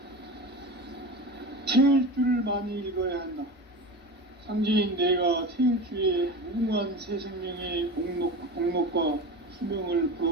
태일주를 많이 읽어야 한다. 상제인 내가 태일주의 무궁한 새 생명의 목록과 수명을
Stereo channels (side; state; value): both; normal; correlation 0.29